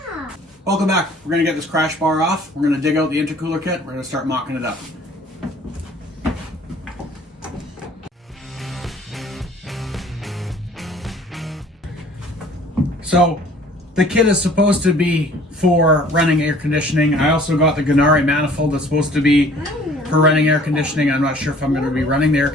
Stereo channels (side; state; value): both; normal; correlation 0.53